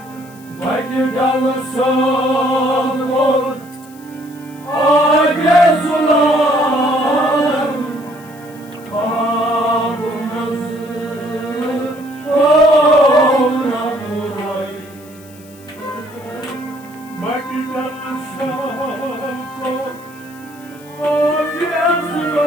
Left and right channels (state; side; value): noise; left; hiss, 24 dB below the sound